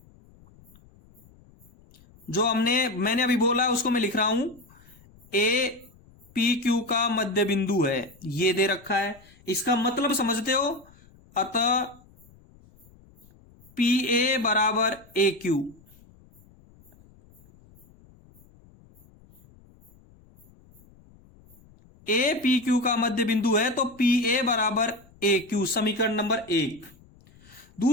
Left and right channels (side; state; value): left; noise; rumble, 27 dB below the sound